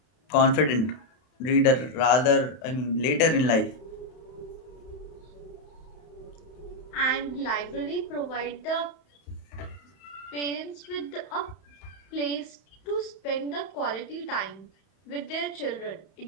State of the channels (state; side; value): late; right; 31 ms